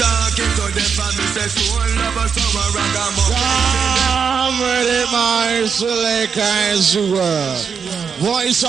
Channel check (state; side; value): quieter; left; 6.4 dB